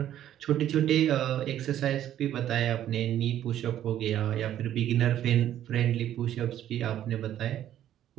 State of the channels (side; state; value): left; quieter; 11.6 dB